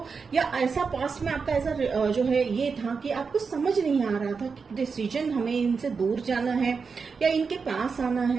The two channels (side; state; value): left; quieter; 5.2 dB